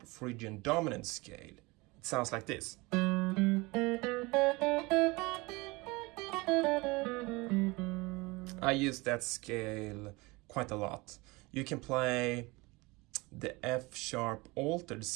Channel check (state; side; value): quieter; left; 24.0 dB